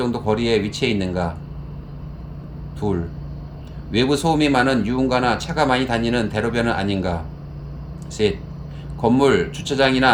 거리에 위치해 있는가? 2. 외부 소음이 많은 유흥가나 차가 많이 다니는 대로변은 아닌가? 3. 건물,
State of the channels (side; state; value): both; identical; correlation 1.00